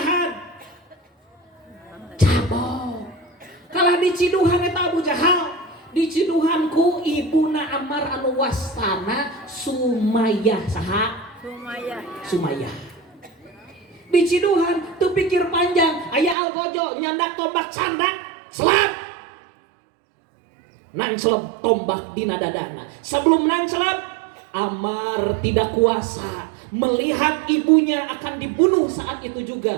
cabok. Kalah diciduhan eta Abu Jahal, diciduhan ku ibuna Ammar anu wastana Sumayyah. Saha? Sumayyah. Diciduhan tuh pikir panjang, aya algojo nyandak tombak candak selap. Nan selap tombak dina dadana. Sebelum nan selap Ammar tidak kuasa melihat ibunya akan dibunuh saat itu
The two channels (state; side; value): drops out; left; at 16.4 s